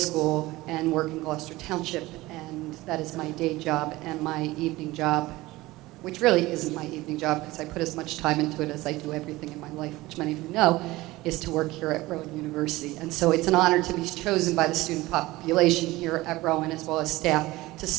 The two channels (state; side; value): quieter; left; 19.1 dB